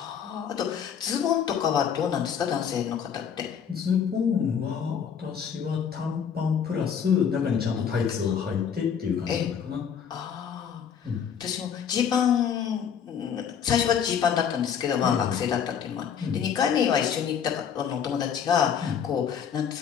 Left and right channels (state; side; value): quieter; right; 7.8 dB